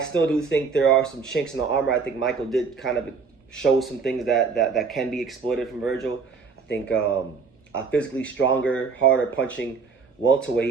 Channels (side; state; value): left; quieter; 5.2 dB